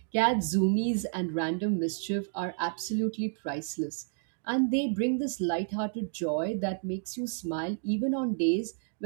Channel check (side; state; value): left; silent; 57 dB below the other